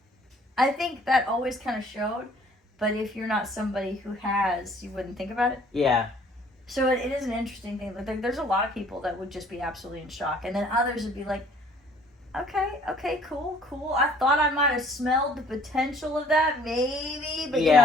I think that always kind of showed, but if you're not somebody who has, you wouldn't think about it. Yeah. So it is an interesting thing. Like, there's a lot of people that would just be absolutely in shock, and then others would be like, okay, cool. I thought I might have smelled the potential of that, maybe, but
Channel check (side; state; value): both; normal; correlation 0.56